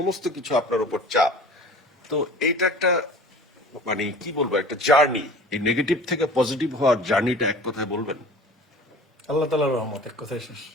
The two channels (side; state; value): both; normal; correlation 0.42